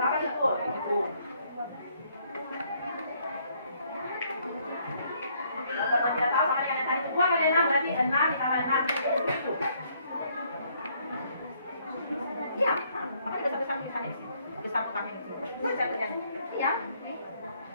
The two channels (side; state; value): both; inverted; correlation -0.67